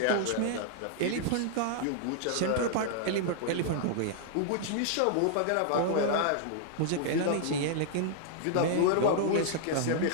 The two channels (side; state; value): both; different; correlation -0.01